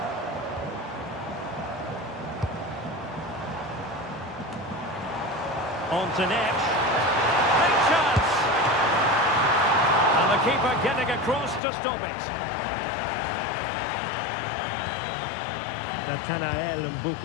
On to Neves. Big chance! And the keeper getting across to stop it. Nathanael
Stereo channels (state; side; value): drops out; right; at 11.6 s